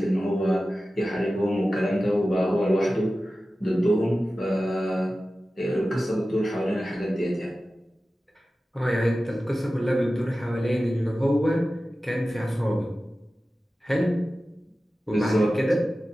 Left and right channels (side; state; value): both; normal; correlation 0.95